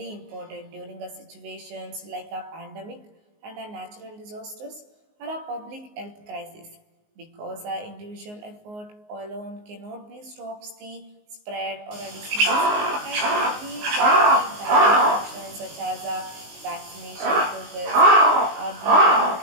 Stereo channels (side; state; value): left; late; 19 ms